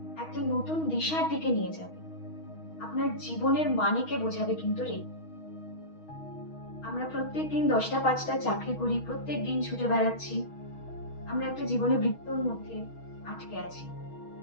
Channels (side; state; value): right; late; 6.3 ms